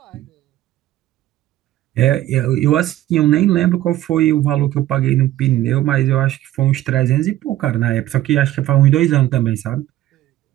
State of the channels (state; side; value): quieter; left; 14.1 dB